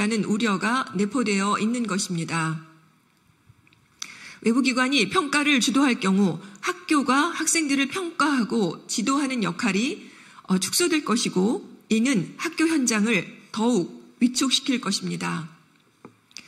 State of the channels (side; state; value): both; identical; correlation 1.00